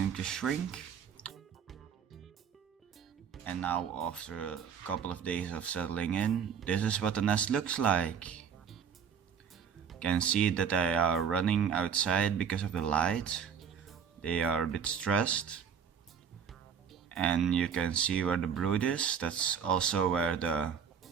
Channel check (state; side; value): quieter; left; 7.2 dB